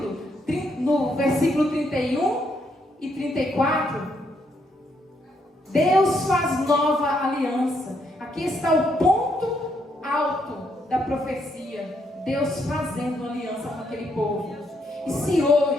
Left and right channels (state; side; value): normal; both; correlation 0.75